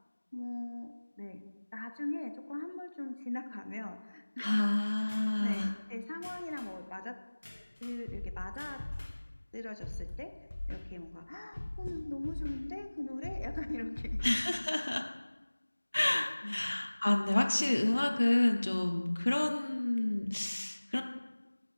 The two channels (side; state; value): both; inverted; correlation -1.00